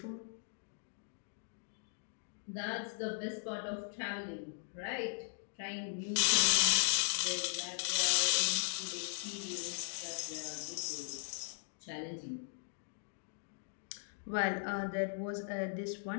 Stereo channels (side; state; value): right; silent; digital silence